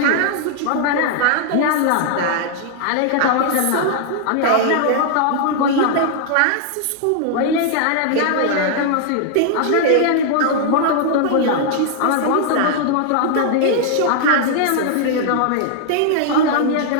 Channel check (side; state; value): both; different; correlation 0.00